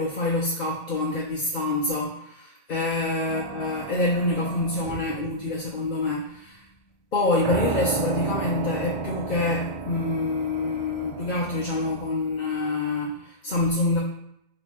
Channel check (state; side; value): late; right; 1.9 ms